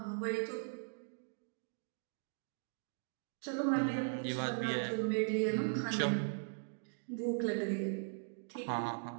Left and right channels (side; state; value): left; silent; digital silence